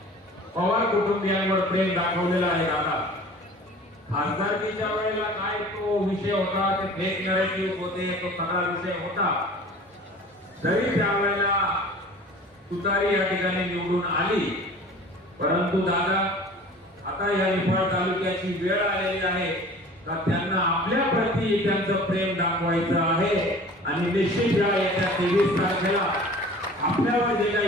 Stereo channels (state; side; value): normal; both; correlation 0.44